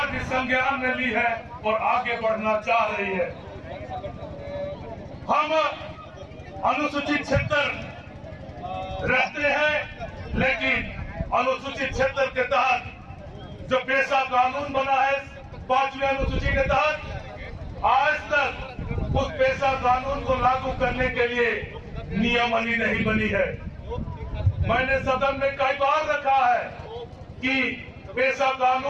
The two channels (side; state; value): both; identical; correlation 1.00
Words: भी संज्ञान में ली है और आगे बढ़ना चाह रही है। हम अनुसूचित क्षेत्र रहते हैं, लेकिन अनुसूचित क्षेत्र के तहत जो पेशा कानून बना है 5वीं अनुसूची के तहत, आज तक उस पेशा कानून को लागू करने के लिए नियमावली नहीं बनी है। मैंने सदन में कई बार रखा है कि पेशा